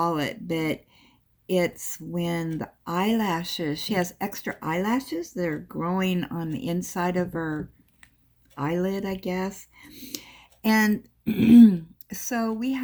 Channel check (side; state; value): both; identical; correlation 1.00